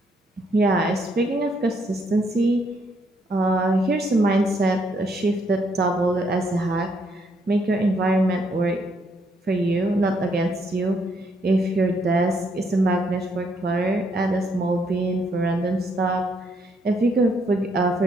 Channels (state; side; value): normal; both; correlation 0.72